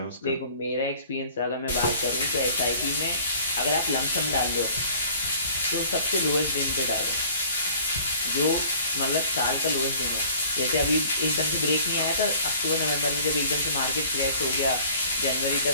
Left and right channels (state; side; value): inverted; both; correlation -0.50